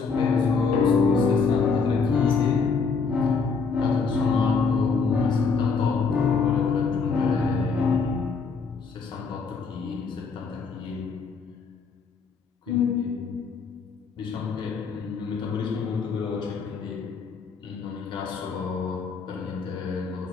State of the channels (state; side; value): quieter; right; 5.0 dB